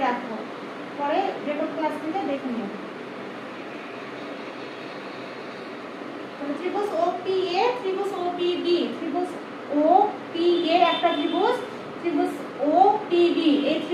রাখো, পরে রেকর্ড ক্লাস থেকে দেখে নিও। ত্রিভুজ OPA, ত্রিভুজ OPB, ত্রিভুজ OPA একটা ত্রিভুজ, ত্রিভুজ OPB এই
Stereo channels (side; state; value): both; identical; correlation 1.00